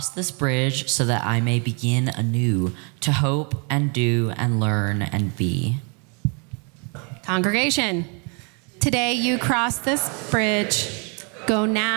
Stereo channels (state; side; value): quieter; left; 35.9 dB